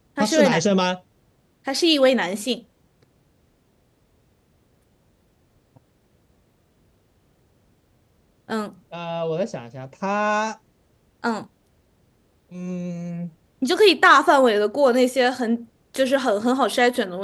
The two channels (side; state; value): both; identical; correlation 1.00